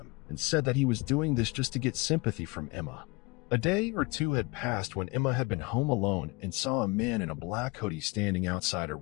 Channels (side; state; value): right; quieter; 25.5 dB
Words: and said that he was doing this just to get sympathy from Emma. A day or two had passed when Emma had been home alone and saw a man in a black hoodie standing outside her